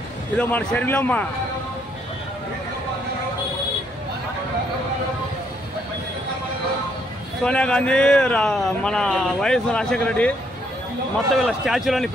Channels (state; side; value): normal; both; correlation 0.71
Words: ఇదో మన శరీరమ్మ సోనియా గాంధీ, మన వైఎస్ రాజశేఖర రెడ్డి మొత్తం వీళ్ళ స్టాచ్యూలన్నీ